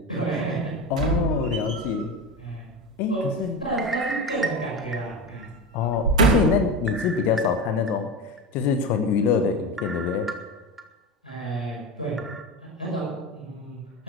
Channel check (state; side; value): normal; both; correlation 0.23